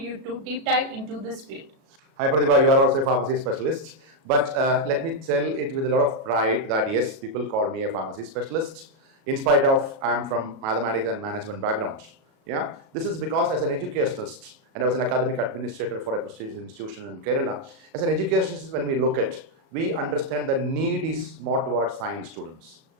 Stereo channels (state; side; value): late; left; 37 ms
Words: to deep dive into this field? Hi Pratibha, you are also a pharmacy specialist. But let me tell it with a lot of pride that yes, people call me a pharmacy specialist. In spite of I am from mathematics and management background. Yeah, this is because as an educationist, and I was an academic administrator for a prestigious institution in Kerala. As an educationist, when we look at, we understand the need is more towards science students,